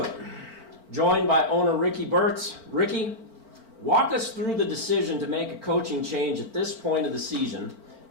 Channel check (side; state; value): left; late; 4.4 ms